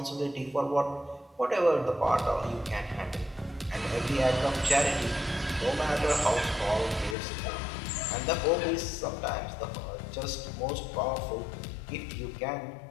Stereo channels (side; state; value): right; drops out; at 7.2 s